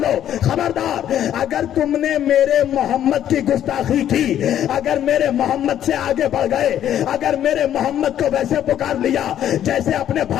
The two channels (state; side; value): quieter; right; 10.8 dB